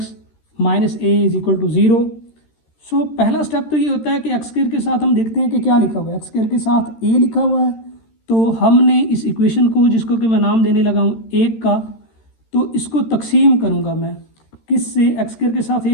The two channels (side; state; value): right; late; 13 ms